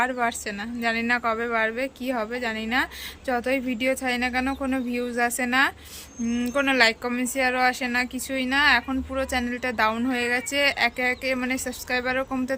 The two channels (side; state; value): both; identical; correlation 1.00